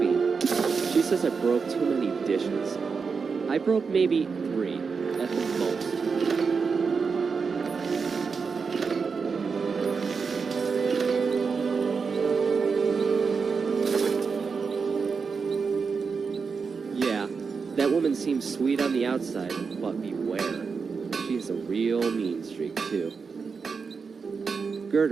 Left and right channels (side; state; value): left; quieter; 5.3 dB